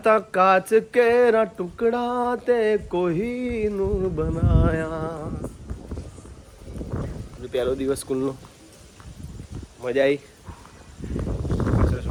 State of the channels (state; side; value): identical; both; correlation 1.00